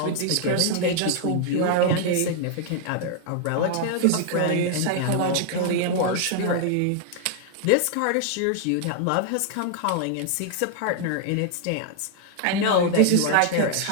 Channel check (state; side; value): different; both; correlation 0.00